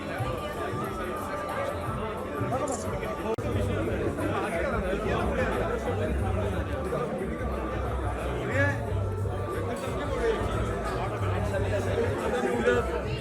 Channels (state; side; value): identical; both; correlation 1.00